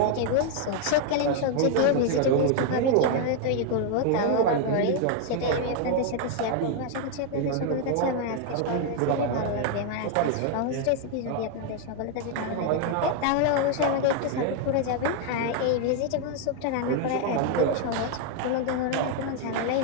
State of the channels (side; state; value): both; different; correlation 0.00